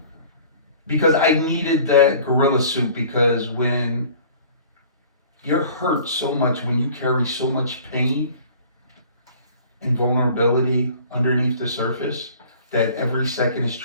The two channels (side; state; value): both; inverted; correlation -0.48